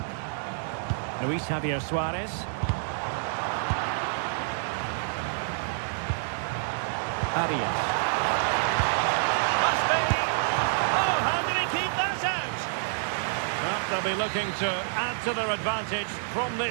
Luis Javier Suarez. Arias. Must be! Oh, how did he keep that out? Well, they'll be looking to add to their advantage from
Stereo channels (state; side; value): silent; left; digital silence